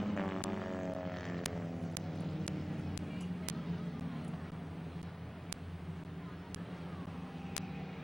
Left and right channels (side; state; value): both; normal; correlation 0.97